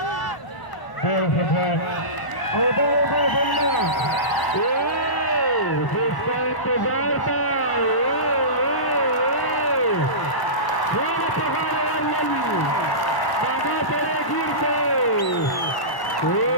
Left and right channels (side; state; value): right; late; 1.1 ms